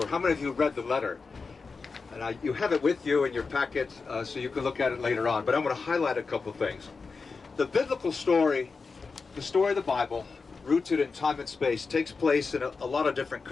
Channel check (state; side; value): quieter; right; 4.6 dB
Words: How many of you read the letter? And you have it with you in your packet, so you can look at it later on. But I'm going to highlight a couple things. The biblical story, the story of the Bible, rooted in time and space, takes place in a lot of different